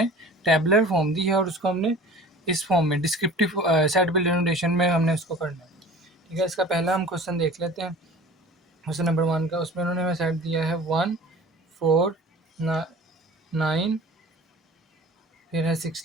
टेबुलर फॉर्म दी है और उसको हमने इस फॉर्म में डिस्क्रिप्टिव सेट बिल्डर नोटेशन में हमने उसको करना है। ठीक है, इसका पहला हम क्वेश्चन देख लेते हैं, क्वेश्चन नंबर 1 का। उसमें उन्होंने हमें सेट दिया है 1 4 9, फिर है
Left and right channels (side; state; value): both; normal; correlation 0.43